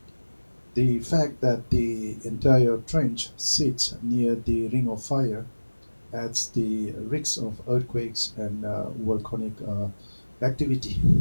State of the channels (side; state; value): both; inverted; correlation -1.00